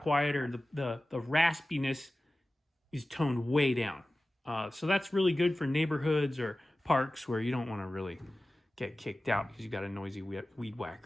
quieter. The raspiness is toned way down. So that's really good for neighborhoods or parks where you don't want to really get kicked out because you got a noisy weed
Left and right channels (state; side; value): normal; both; correlation 0.96